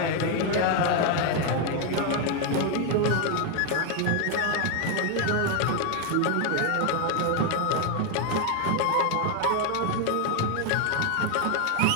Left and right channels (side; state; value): both; different; correlation 0.01